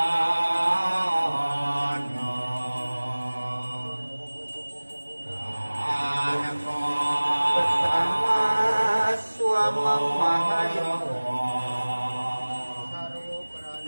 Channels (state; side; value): inverted; both; correlation -1.00